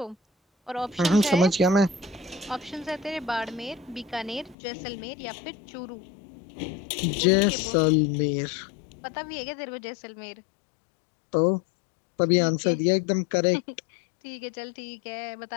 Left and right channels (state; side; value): drops out; right; at 4.5 s